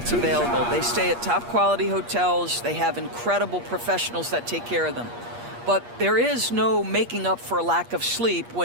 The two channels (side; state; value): left; late; 8.4 ms